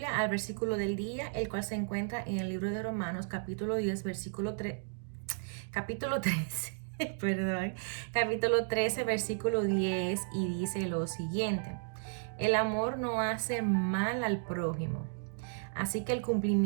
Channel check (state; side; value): silent; left; digital silence